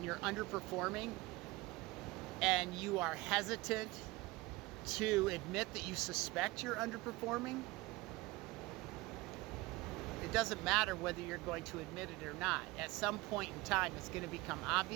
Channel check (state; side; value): quieter; left; 21.0 dB